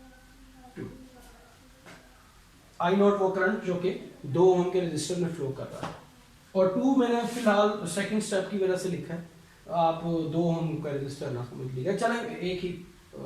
वो करंट जो कि 2 ओम के रजिस्टर में फ्लो कर रहा है, और 2 मैंने फिलहाल सेकंड स्टेप की वजह से लिखा है, आप 2 ओम का रजिस्टर ना समझ लीजिएगा, चले एक ही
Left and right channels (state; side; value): identical; both; correlation 1.00